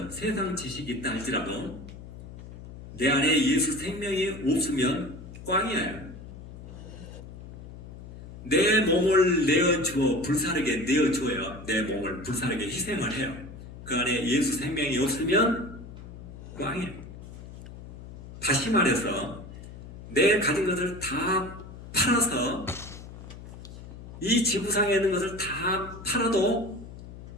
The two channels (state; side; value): noise; left; hum, 14 dB below the sound